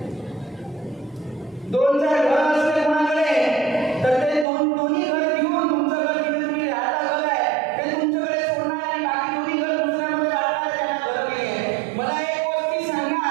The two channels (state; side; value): drops out; left; at 4.5 s